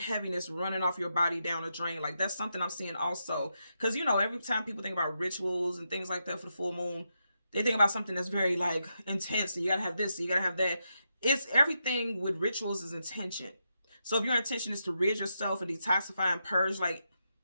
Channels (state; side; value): inverted; both; correlation -0.84